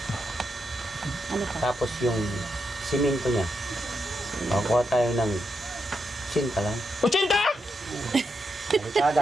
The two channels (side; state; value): both; normal; correlation 0.83